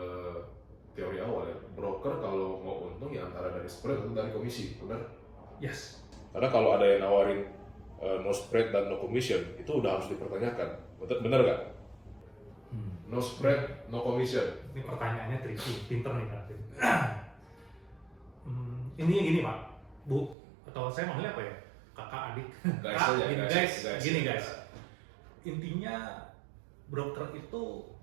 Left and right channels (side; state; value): left; drops out; at 20.4 s